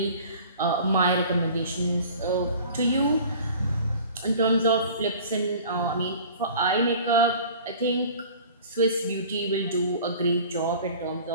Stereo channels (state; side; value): inverted; both; correlation -0.44